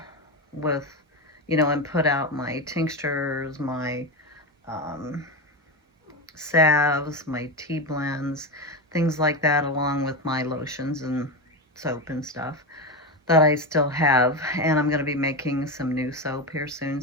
with, and put out my tinctures, my salves, my tea blends, things like that, along with my lotions and soap and stuff that I still have. And I'm going to be making some new soap here soon,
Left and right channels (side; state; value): both; normal; correlation 0.16